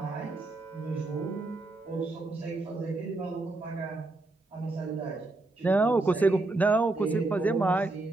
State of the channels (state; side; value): quieter; left; 3.0 dB